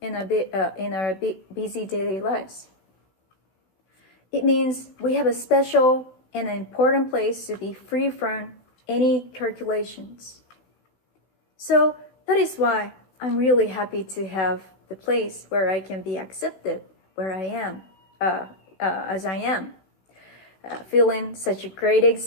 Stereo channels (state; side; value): late; right; 16 ms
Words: in our busy daily lives. It means we have a special and an important place to be free from any calculations. So that is why I'm really happy to have the place where I can be accepted, where I am, as I am, feeling such a great